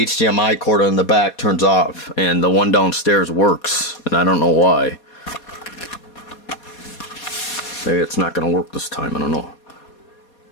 cord on the back turns off, and the one downstairs works, and I don't know why. Maybe it's not gonna work this time, I don't know.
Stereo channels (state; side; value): late; right; 4.2 ms